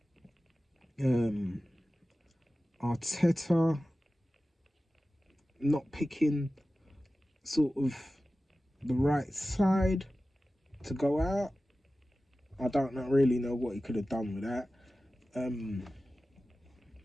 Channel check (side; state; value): both; normal; correlation 0.95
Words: Arteta not picking sort of the right side to go out. I don't really know what he could have done with that.